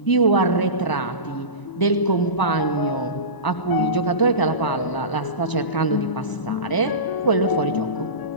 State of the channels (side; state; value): right; late; 1.0 ms